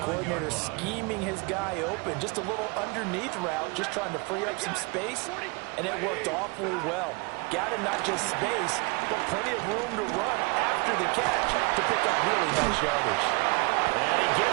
scheming his guy open. Just a little underneath route, just trying to free up some space, and it worked awfully well. Got him not just space, but plenty of room to run after the catch to pick up really nice yardage. And he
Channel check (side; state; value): left; quieter; 29.0 dB